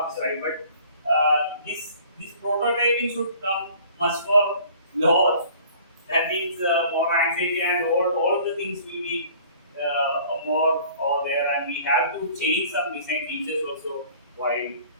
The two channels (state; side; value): inverted; both; correlation -0.51